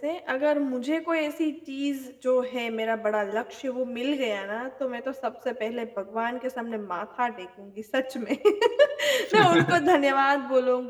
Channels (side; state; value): both; identical; correlation 1.00